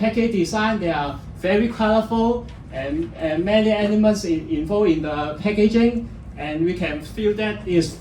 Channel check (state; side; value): identical; both; correlation 1.00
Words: design, they are very colorful and many elements involved in the packaging, and we can feel that it's